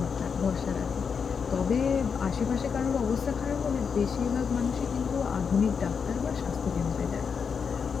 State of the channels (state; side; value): quieter; right; 6.2 dB